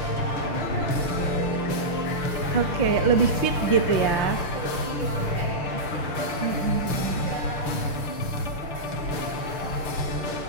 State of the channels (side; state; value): right; late; 6.7 ms